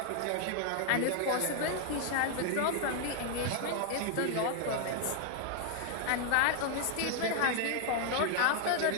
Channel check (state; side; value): different; both; correlation 0.00